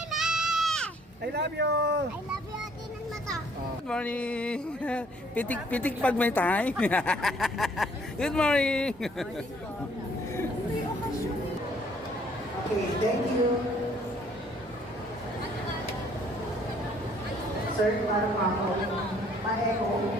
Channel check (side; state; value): both; normal; correlation 0.61